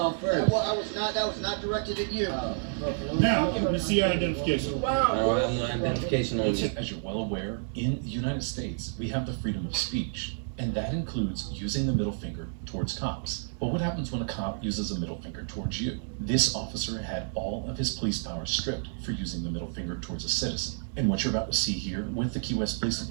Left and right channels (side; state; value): left; silent; digital silence